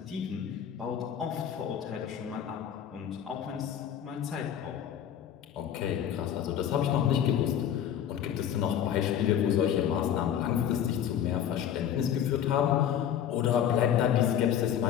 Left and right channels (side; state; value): right; quieter; 9.6 dB